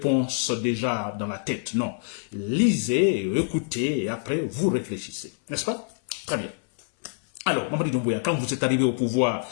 déjà dans la tête. Non. Lisez, écoutez et après, vous réfléchissez. N'est-ce pas? Très bien. Alors, Mamadi Doumbouya, quand vous êtes arrivé au pouvoir,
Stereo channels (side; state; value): right; silent; 61 dB below the other